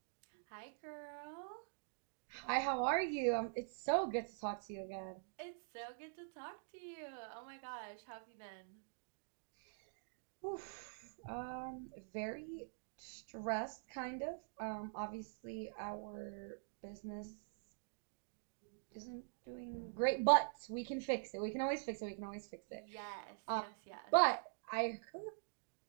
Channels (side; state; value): left; silent; digital silence